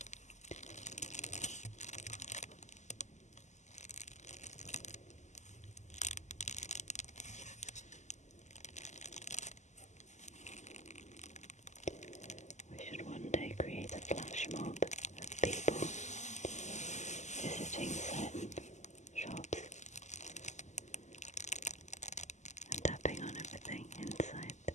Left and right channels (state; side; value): late; right; 0.34 ms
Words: We should one day create a flash mob of people visiting certain shops and tapping on everything inside.